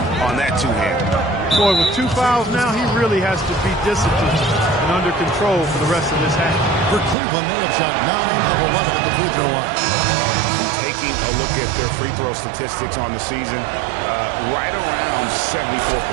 on that 2-hand. Boy, with 2 fouls now, he really has to be disciplined and under control for the rest of this half. For Cleveland, they have shot 9 of 11 at the free throw line. Taking a look at their free throw statistics on the season, right around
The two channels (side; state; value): left; drops out; at 7.2 s